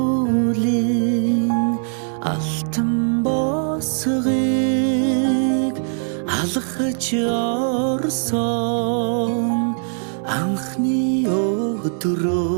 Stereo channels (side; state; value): left; silent; 65 dB below the other